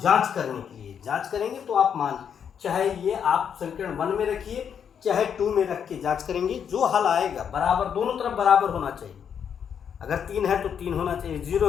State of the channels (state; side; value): quieter; right; 7.8 dB